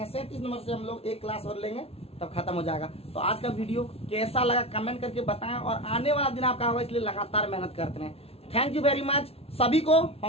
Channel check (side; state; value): right; late; 0.29 ms